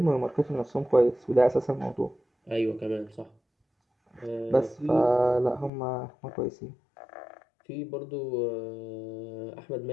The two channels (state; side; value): drops out; right; at 5.7 s